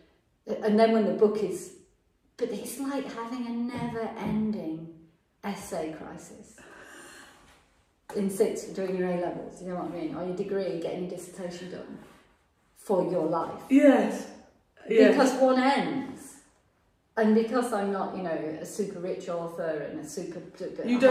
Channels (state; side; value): identical; both; correlation 1.00